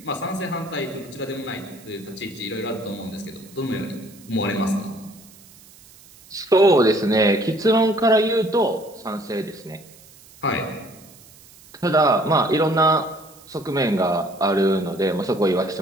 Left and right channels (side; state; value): right; noise; hiss, 24 dB below the sound